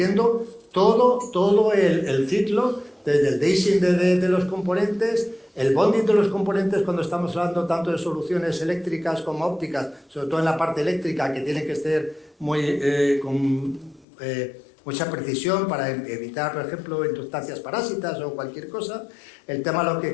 todo el ciclo, desde el dicing de los componentes, el bonding de los componentes cuando estamos hablando tanto de soluciones eléctricas como ópticas, sobre todo en la parte eléctrica, que tiene que ser con mucha precisión para evitar, por ejemplo, inductancias parásitas o cualquier cosa. El tema, lo que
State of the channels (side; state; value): right; drops out; at 14.1 s